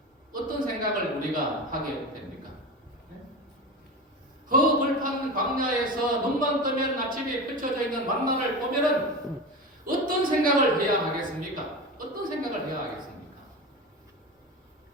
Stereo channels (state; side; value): normal; both; correlation 0.26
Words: 어떤 생각을 우리가 하게 됩니까? 허벌판 광야에서 눈만 뜨면 아침에 펼쳐져 있는 만나를 보면은 어떤 생각을 해야 하겠습니까? 어떤 생각을 해야 하겠습니까?